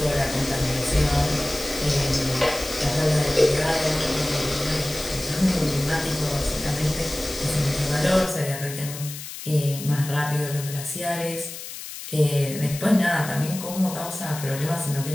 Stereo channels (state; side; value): noise; left; hiss, 10 dB below the sound